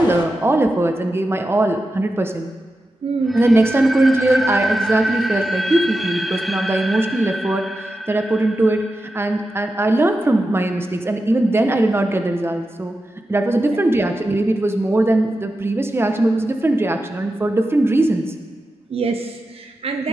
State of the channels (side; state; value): both; normal; correlation 0.91